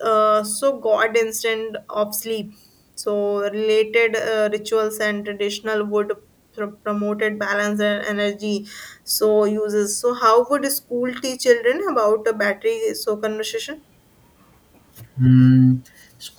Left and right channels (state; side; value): identical; both; correlation 1.00